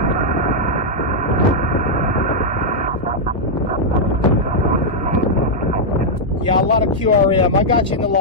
Yeah, a lot of QRM. I got you in the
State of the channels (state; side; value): normal; both; correlation -0.04